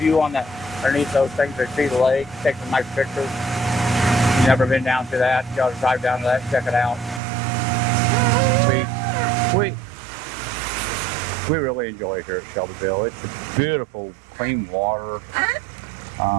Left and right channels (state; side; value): drops out; left; at 7.2 s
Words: on the underneath those things that see the lake, take some nice pictures. You've never been down to that, you gotta drive down to that and check it out. We really enjoy it here at Shelbyville. It's a beautiful, clean water.